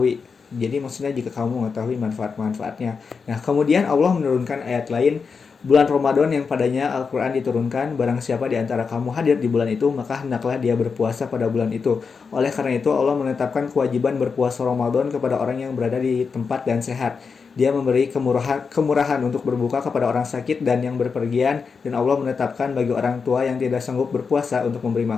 Jadi maksudnya jika kamu mengetahui manfaat-manfaatnya. Nah, kemudian Allah menurunkan ayat lain, bulan Ramadan yang padanya Al-Quran diturunkan, barang siapa di antara kamu hadir di bulan itu, maka hendaklah dia berpuasa pada bulan itu. Oleh karena itu Allah menetapkan kewajiban berpuasa Ramadan kepada orang yang berada di tempat dan sehat. Dia memberi kemurahan untuk berbuka kepada orang sakit dan yang berpergian, dan Allah menetapkan bagi orang tua yang tidak sanggup berpuasa untuk memberi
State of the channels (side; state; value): right; quieter; 5.4 dB